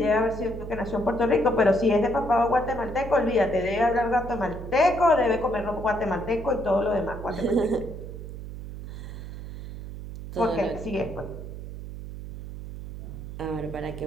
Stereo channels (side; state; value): right; noise; hum, 10 dB below the sound